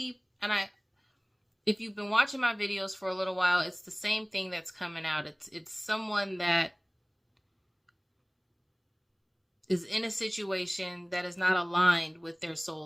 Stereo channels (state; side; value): identical; both; correlation 1.00